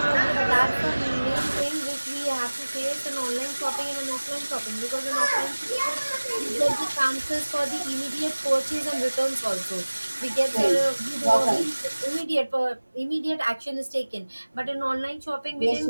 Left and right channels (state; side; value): inverted; both; correlation -1.00